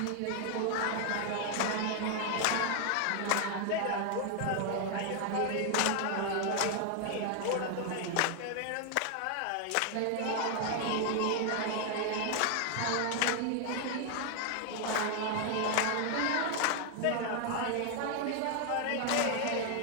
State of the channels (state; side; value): different; both; correlation 0.00